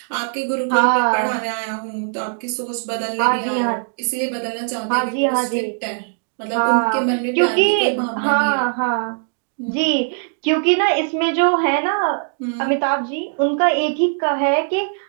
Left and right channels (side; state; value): left; silent; digital silence